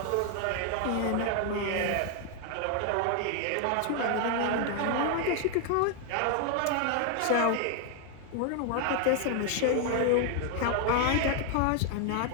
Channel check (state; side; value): different; both; correlation 0.00